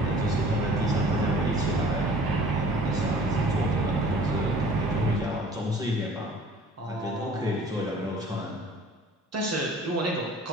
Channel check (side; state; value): both; normal; correlation 0.48